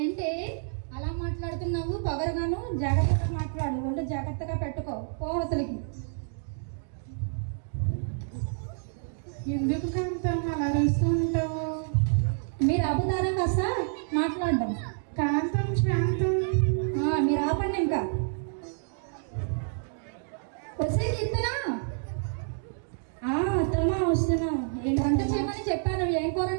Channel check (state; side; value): silent; left; digital silence